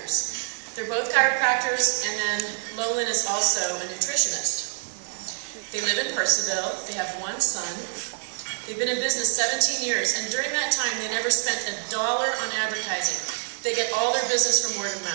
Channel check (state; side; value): silent; left; digital silence